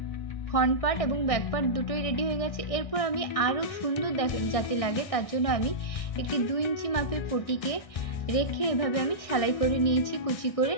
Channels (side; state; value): right; late; 1.6 ms